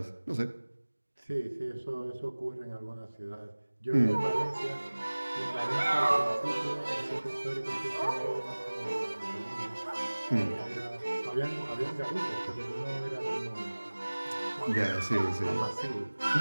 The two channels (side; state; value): both; inverted; correlation -1.00